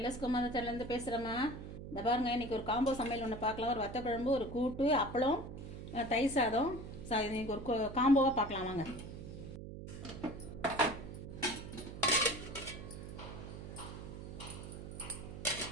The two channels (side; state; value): right; noise; hum, 10 dB below the sound